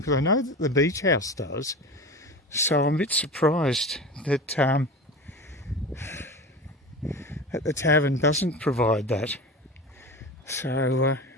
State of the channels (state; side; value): normal; both; correlation 0.30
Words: I know that the beach house does. So I'm a bit surprised that the tavern doesn't provide that. So a